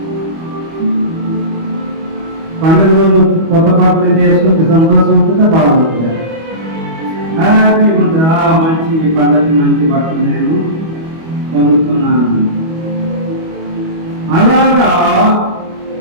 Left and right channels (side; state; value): left; late; 25 ms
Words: పండుగ రోజు కొత్త బట్టలు చేసుకుంటే సంతోషం ఉంటుందా, బాగుంటుందా? హ్యాపీ ఉంటుందా? మంచి పండుగ మంచి బట్టలు నేను పొందుతున్నాను. అలాగా